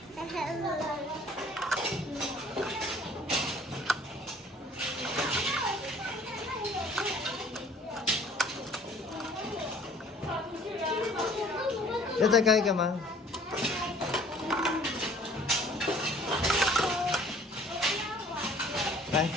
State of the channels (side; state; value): both; normal; correlation 0.53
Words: 要再盖一个吗？来，